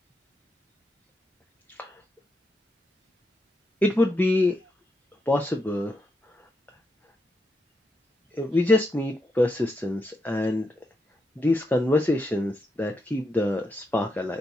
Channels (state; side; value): normal; both; correlation 0.83